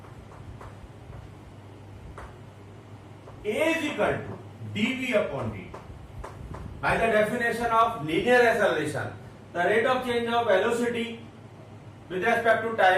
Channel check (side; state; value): both; identical; correlation 1.00